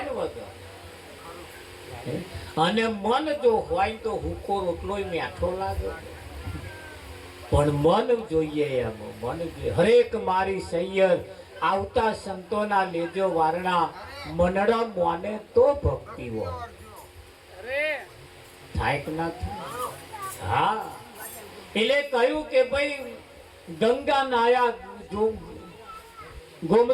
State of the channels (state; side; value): identical; both; correlation 1.00